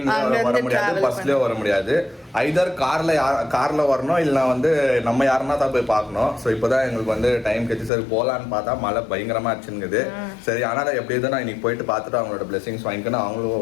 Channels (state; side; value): drops out; right; at 7.9 s